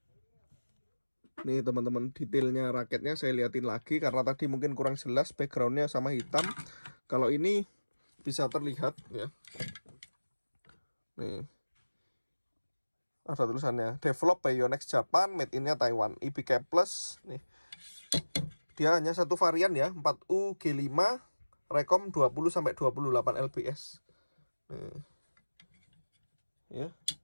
Nih teman-teman, detailnya raketnya saya liatin lagi karena tadi mungkin kurang jelas backgroundnya sama hitam. Kalau ini bisa terlihat ya. Nih ada tulisannya develop by Yonex Japan, made in-nya Taiwan, IBK Plus. Nih dia hanya satu varian ya, 4U G5 rekom 20 sampai 28 lbs. Nih ya,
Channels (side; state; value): both; inverted; correlation -1.00